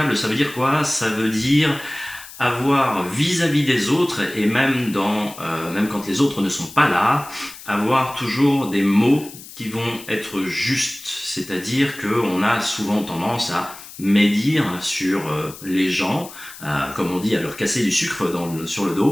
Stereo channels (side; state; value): left; noise; hiss, 16 dB below the sound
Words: ça veut dire quoi? Ça veut dire avoir vis-à-vis des autres, et même quand les autres ne sont pas là, avoir toujours des mots qui vont être justes. C'est-à-dire qu'on a souvent tendance à médire sur les gens, comme on dit, à leur casser du sucre sur le